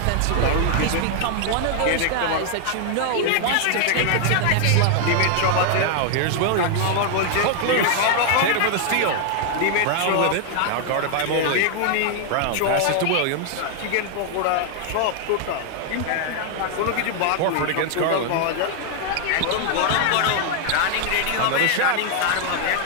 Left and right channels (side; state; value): both; different; correlation 0.00